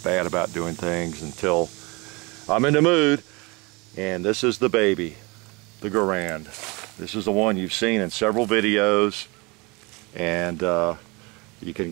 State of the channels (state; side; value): quieter; left; 26.5 dB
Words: bad about doing things until I'm in the mood. And this is the baby, the Garand. This is the one you've seen in several videos, and you can